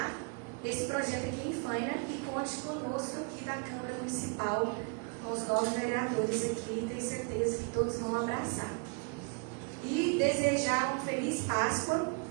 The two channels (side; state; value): left; quieter; 35.4 dB